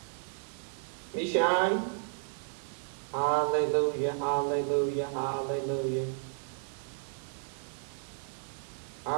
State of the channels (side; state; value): left; silent; 56 dB below the other